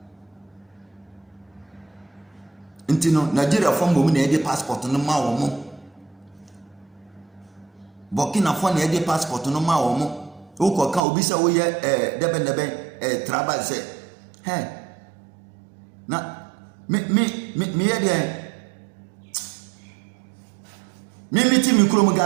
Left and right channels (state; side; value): drops out; left; at 11.0 s